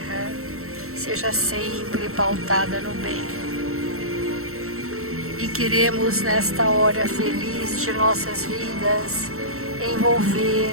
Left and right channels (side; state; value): left; late; 0.63 ms